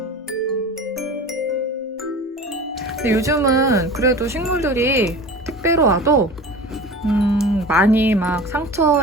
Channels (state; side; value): normal; both; correlation 0.35